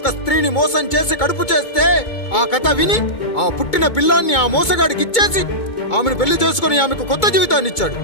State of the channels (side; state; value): right; late; 2.2 ms